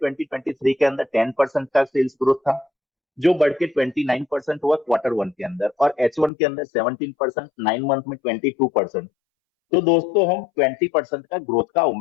2023 के अंदर 10% का सेल्स ग्रोथ था जो बढ़ के 29% हुआ क्वार्टर 1 के अंदर, और H1 के अंदर 17%, 9 मंथ में 22%। तो दोस्तों हम 20% का ग्रोथ का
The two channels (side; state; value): right; drops out; at 6.3 s